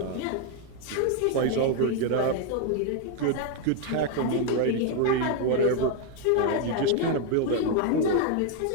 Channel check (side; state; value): both; different; correlation 0.01